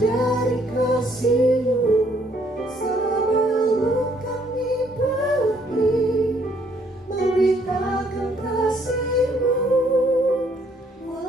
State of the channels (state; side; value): normal; both; correlation 0.66